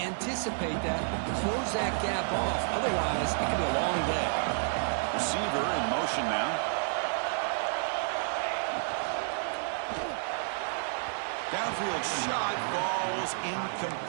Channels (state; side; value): silent; left; digital silence